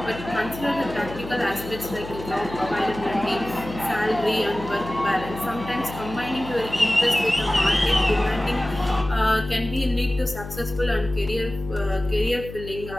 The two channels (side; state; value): left; noise; hum, 12 dB below the sound